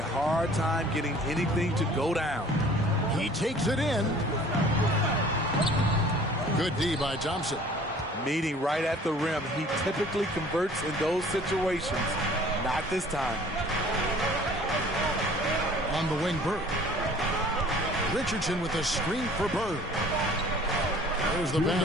hard time getting anything to go down. He takes it in. Good D by Thompson. Meeting right at the rim. He typically converts in those situations. Not this time. On the wing, Bird. Richardson with a screen for Bird. There's the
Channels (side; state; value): both; normal; correlation 0.51